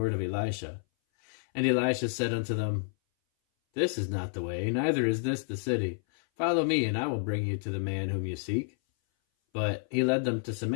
of Elisha. And Elisha said unto them, This is not the way, neither is this the city. Follow me, and I will bring you to the man whom you seek. But he led them to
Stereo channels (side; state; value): right; silent; 58 dB below the other